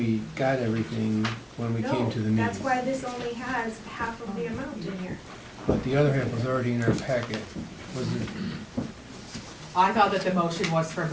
got everything when we came to the No, meeting. that's why this only has half of the amount in here. But the other half was already in our packet. Was it? I thought that the motion was for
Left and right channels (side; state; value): both; identical; correlation 1.00